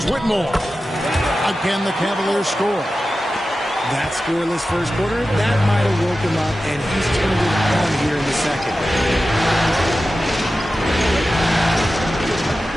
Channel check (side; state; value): both; normal; correlation 0.93